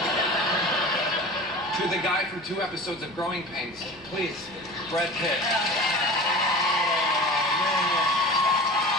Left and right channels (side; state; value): both; normal; correlation 0.36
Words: to the guy from 2 episodes of Growing Pains. Please, Brad Pitt.